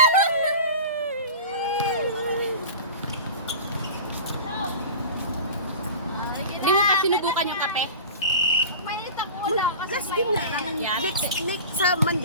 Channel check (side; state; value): both; inverted; correlation -0.35